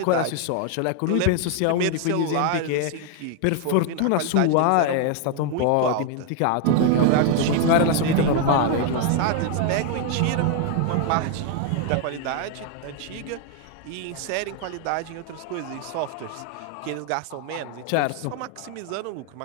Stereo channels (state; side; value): different; both; correlation 0.00